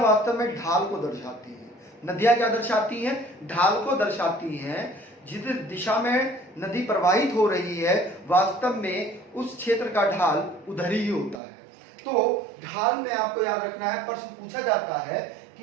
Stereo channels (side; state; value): left; drops out; at 11.4 s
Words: वास्तव में ढाल को दर्शाती हैं। नदियां क्या दर्शाती हैं, ढाल को दर्शाती हैं। जिस दिशा में नदी प्रवाहित हो रही है वास्तव में उस क्षेत्र का ढाल उधर ही होता है। तो ढाल में आपको याद रखना है, प्रश्न पूछा जाता है